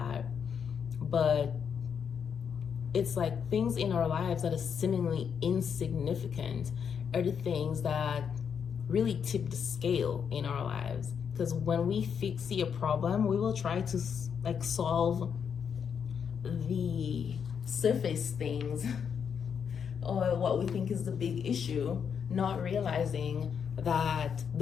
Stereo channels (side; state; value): right; quieter; 7.2 dB